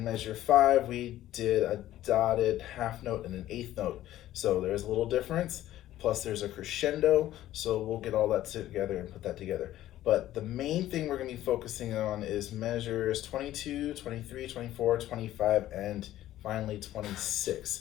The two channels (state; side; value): quieter; right; 13.8 dB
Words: measure 5 we did a dotted half note and an eighth note. So there's a little difference. Plus there's a crescendo, so we'll get all that together and put that together. But the main thing we're going to be focusing on is measures 22, 23, 24, 25, and finally